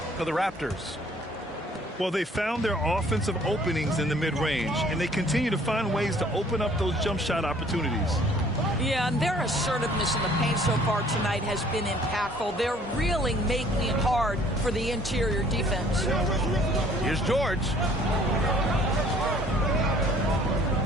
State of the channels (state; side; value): normal; both; correlation 0.57